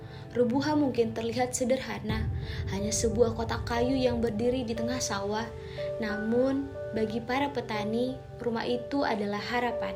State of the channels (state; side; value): identical; both; correlation 1.00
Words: Rubuha mungkin terlihat sederhana, hanya sebuah kotak kayu yang berdiri di tengah sawah. Namun, bagi para petani, rumah itu adalah harapan.